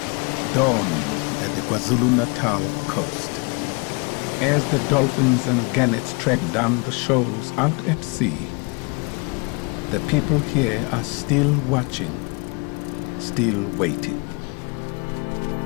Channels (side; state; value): right; quieter; 31.5 dB